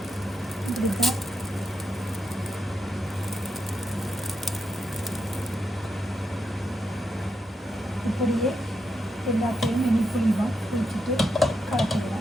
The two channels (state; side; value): normal; both; correlation 0.83